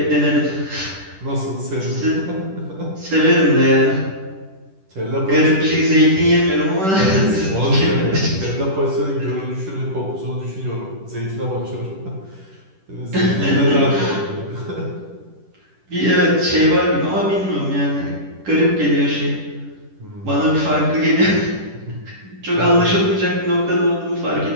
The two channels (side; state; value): left; late; 10 ms